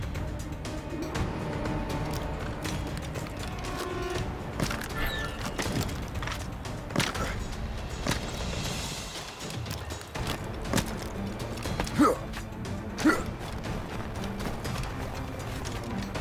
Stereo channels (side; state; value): both; identical; correlation 1.00